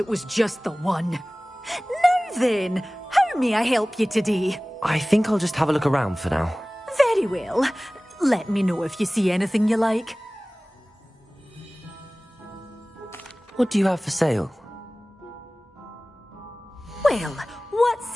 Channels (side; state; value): both; normal; correlation 0.98